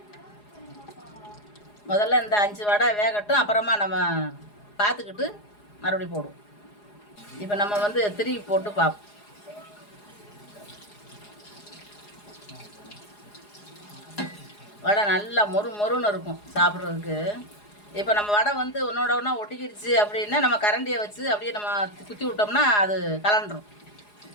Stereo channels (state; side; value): late; right; 4.8 ms